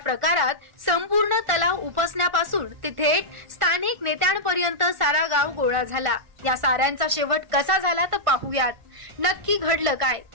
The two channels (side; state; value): left; late; 1.5 ms